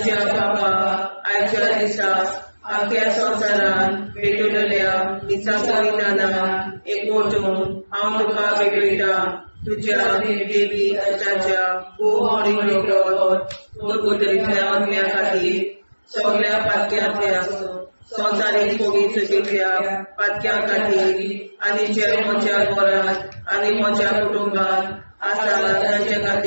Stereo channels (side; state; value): both; inverted; correlation -1.00